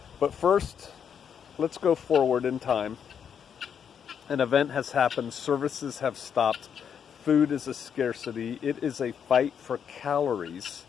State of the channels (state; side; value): quieter; right; 7.8 dB